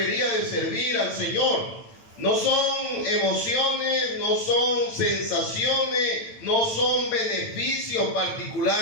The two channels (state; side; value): late; right; 8.9 ms